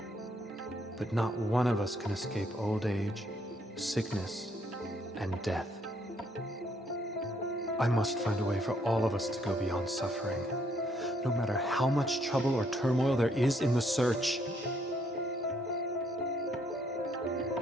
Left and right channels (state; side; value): normal; both; correlation 0.70